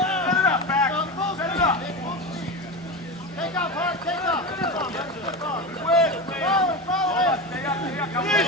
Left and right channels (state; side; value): normal; both; correlation 0.22